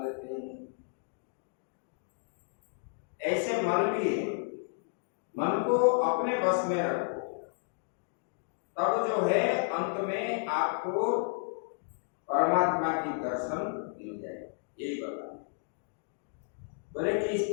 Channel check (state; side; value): silent; right; digital silence